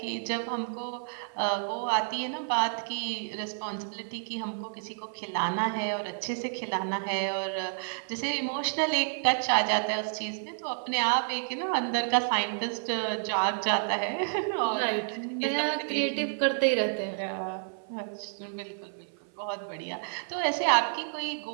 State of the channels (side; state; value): left; silent; 58 dB below the other